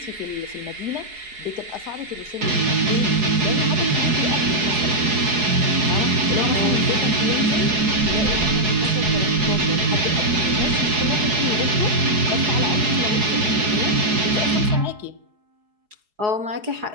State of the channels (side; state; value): left; late; 4.7 ms